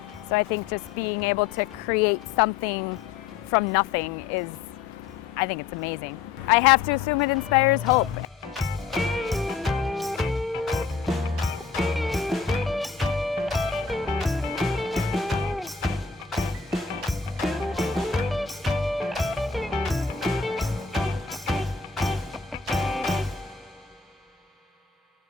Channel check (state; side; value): quieter; right; 5.7 dB